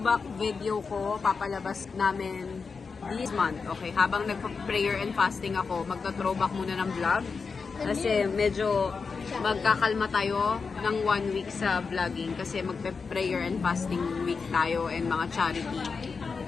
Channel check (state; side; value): quieter; right; 5.0 dB